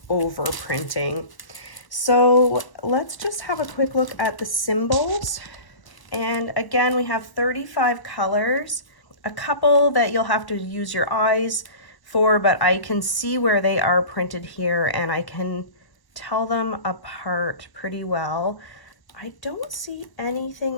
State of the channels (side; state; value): right; late; 1.1 ms